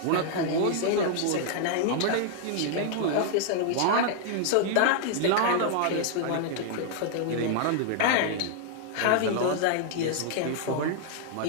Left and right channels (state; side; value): different; both; correlation -0.01